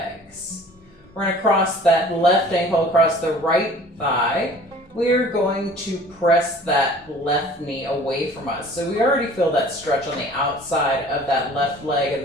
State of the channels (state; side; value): normal; both; correlation 0.48